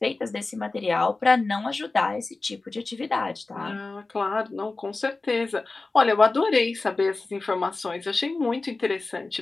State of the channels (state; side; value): quieter; right; 3.5 dB